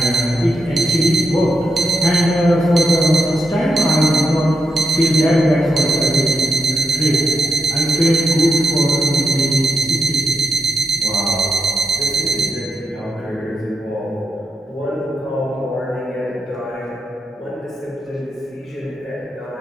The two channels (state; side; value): normal; both; correlation 0.85